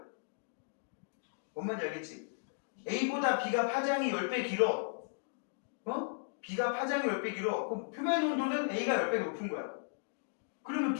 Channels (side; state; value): right; silent; digital silence